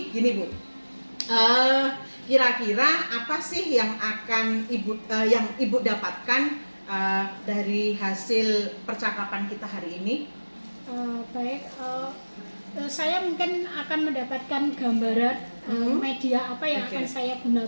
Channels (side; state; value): both; inverted; correlation -1.00